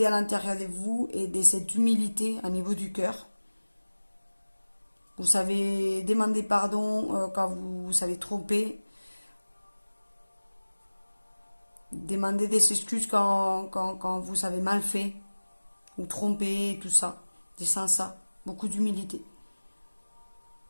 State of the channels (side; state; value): both; inverted; correlation -1.00